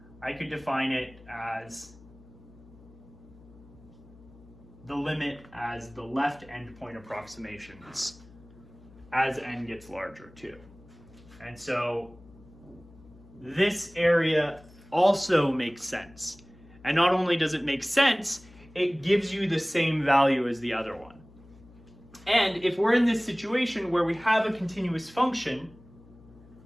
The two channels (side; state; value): left; noise; hum, 23 dB below the sound